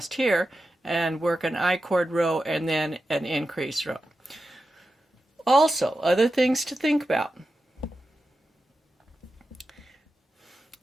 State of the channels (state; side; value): normal; both; correlation 0.91